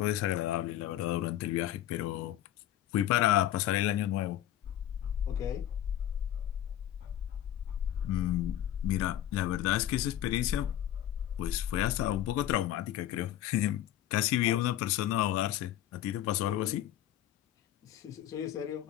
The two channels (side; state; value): right; quieter; 12.2 dB